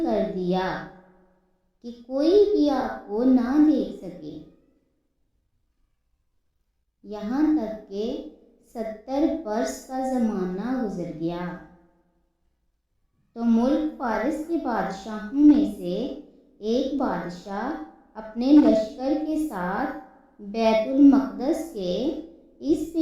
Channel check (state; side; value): identical; both; correlation 1.00